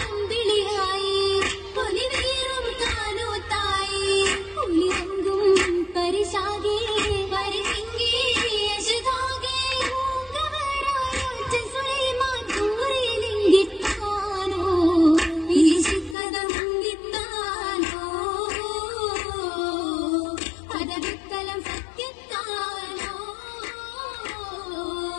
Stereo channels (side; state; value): right; drops out; at 16.2 s